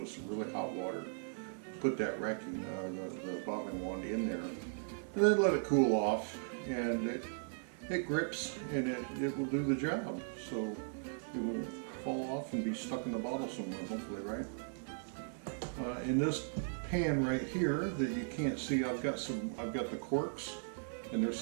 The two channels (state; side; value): silent; left; digital silence